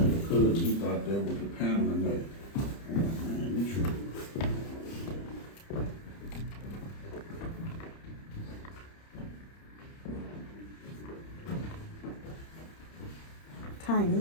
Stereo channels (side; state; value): right; late; 30 ms